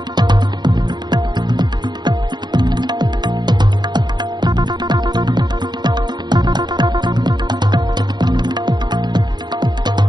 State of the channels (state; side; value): late; left; 0.21 ms